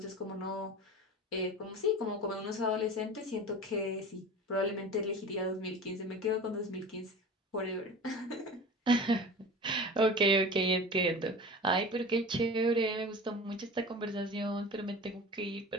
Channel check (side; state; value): both; normal; correlation 0.35